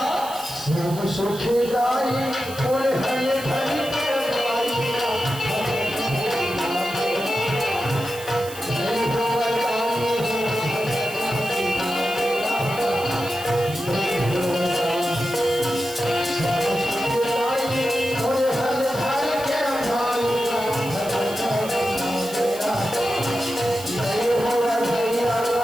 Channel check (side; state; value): right; noise; hiss, 14 dB below the sound